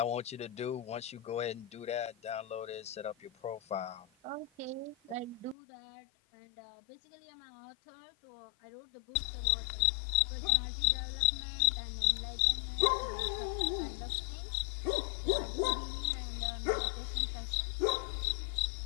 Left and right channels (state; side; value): drops out; right; at 5.6 s